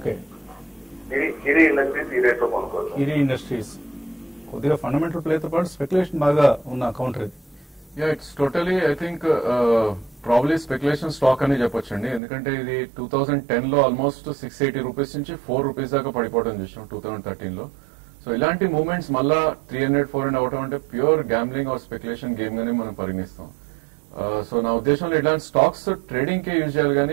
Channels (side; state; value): left; drops out; at 12.2 s